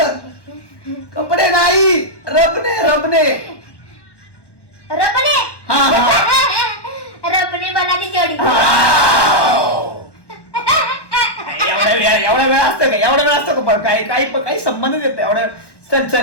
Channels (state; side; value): late; right; 1.2 ms